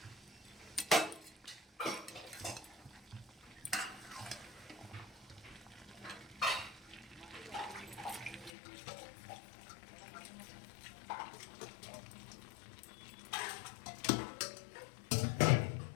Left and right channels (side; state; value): right; drops out; at 8.5 s